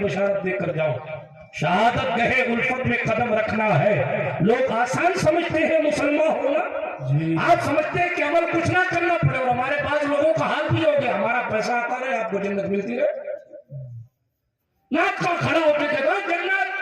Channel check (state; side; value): identical; both; correlation 1.00